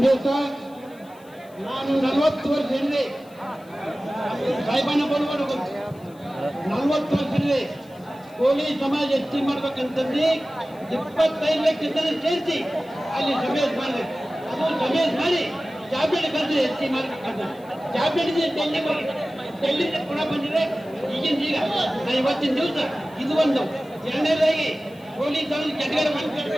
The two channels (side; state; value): left; noise; hiss, 28 dB below the sound